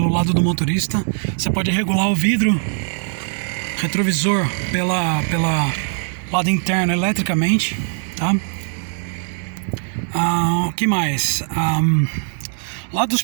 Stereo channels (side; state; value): left; silent; 59 dB below the other